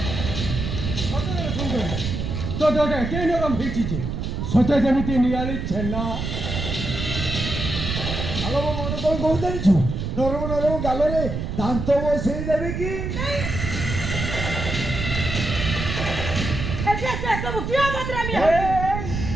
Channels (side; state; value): right; noise; rumble, 4 dB below the sound